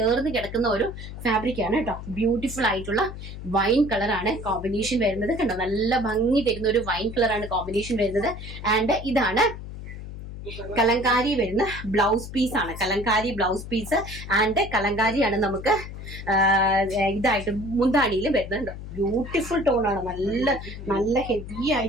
കിടക്കുന്ന ഒരു ഫാബ്രിക് ആണ് കേട്ടോ. ബ്യൂട്ടിഫുൾ ആയിട്ടുള്ള വൈൻ കളറാണ് കോമ്പിനേഷൻ വരുന്നത്. കണ്ടോ, നല്ല ഭംഗി തരുന്ന ഒരു വൈൻ കളറാണ് കോമ്പിനേഷൻ വരുന്നത്. ആൻഡ് ഇതാണ് കലങ്കാരി വരുന്ന ബ്ലൗസ് പീസ് ആണ്. കലങ്കാരി ബ്ലൗസ് പീസ് ആൻഡ് കലങ്കാരിയാണ് നമുക്ക് ഇതായിട്ട് മുന്താണിയിൽ വരുന്നുണ്ട്. ബ്യൂട്ടിഫുൾ ടോൺ ആണ്, നല്ല നല്ല ഹെവി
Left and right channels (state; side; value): noise; left; hum, 10 dB below the sound